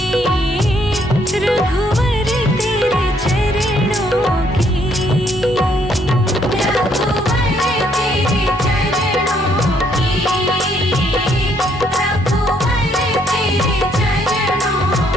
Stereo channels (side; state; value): both; normal; correlation 0.69